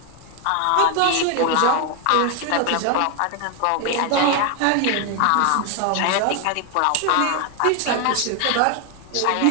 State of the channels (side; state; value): both; different; correlation 0.01